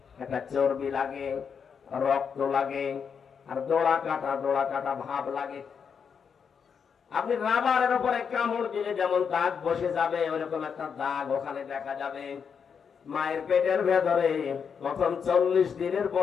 একটা চর্বি লাগে রক্ত লাগে আর দোড়া কাটা ভাব লাগে আপনি রাবারের উপরে কামড় দিলে যেমন দাগ বসে যাবে ওরকম একটা দাগ ওখানে দেখা যাবে মায়ের পেটের ভেতরে প্রথম 40 দিনের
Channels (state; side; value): quieter; right; 6.6 dB